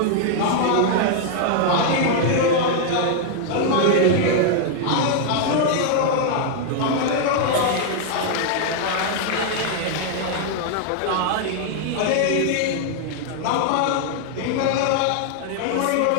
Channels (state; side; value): different; both; correlation 0.00